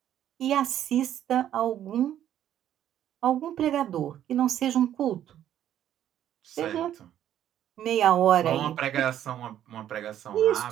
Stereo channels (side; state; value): left; quieter; 11.1 dB